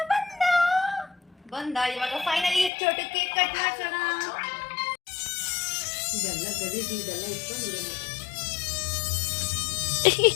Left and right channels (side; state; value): right; drops out; at 2.7 s